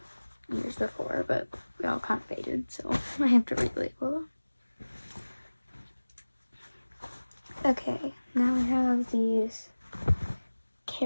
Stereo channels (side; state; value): both; inverted; correlation -1.00